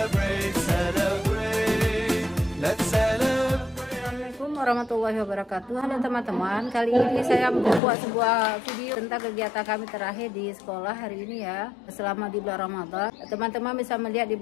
Warahmatullahi wabarakatuh. Halo teman-teman, kali ini saya membuat sebuah video tentang kegiatan kami terakhir di sekolah hari ini ya, selama di bulan Ramadan. Teman-teman bisa melihat di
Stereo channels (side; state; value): right; drops out; at 7.8 s